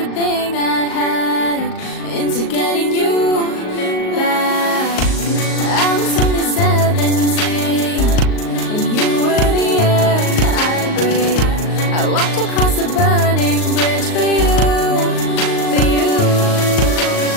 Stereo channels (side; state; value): right; late; 38 ms